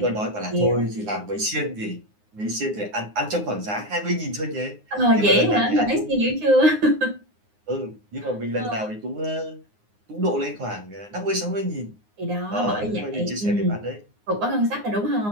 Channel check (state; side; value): late; left; 9.6 ms